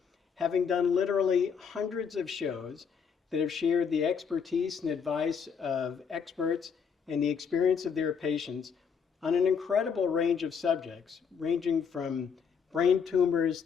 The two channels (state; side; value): quieter; right; 6.5 dB